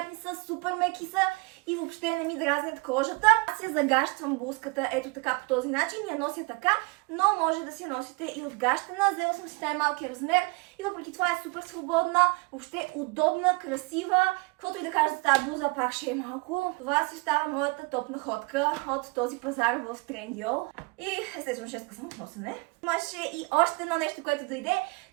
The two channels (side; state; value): left; quieter; 27.5 dB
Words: са, супер меки са и въобще не ми дразнят кожата. Аз я загащвам блузката ето така по този начин, я нося така, но може да си я носите и отгащена. Взела съм си най-малкия размер и въпреки това е супер свободна, въобще удобна, красива. Каквото и да кажа за тази блуза, пак ще е малко. Това си остава моята топ находка от този пазар в Trendyol. И естествено 6 съм от носене. Имаше и още едно нещо, което дойде.